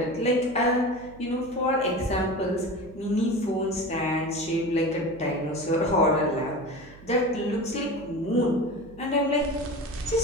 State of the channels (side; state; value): right; noise; hum, 21 dB below the sound